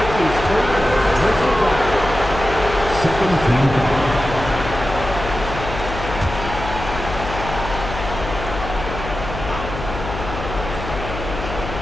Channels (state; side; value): noise; left; hum, 8 dB below the sound